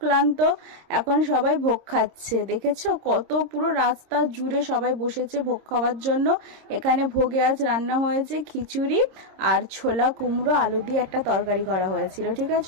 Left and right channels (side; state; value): left; late; 26 ms